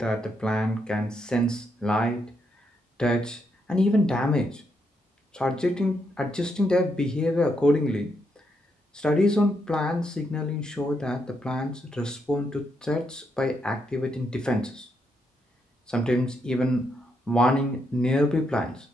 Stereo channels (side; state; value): both; normal; correlation 0.79